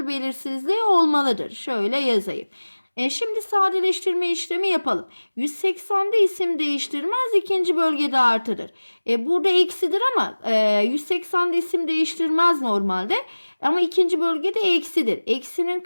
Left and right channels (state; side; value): inverted; both; correlation -1.00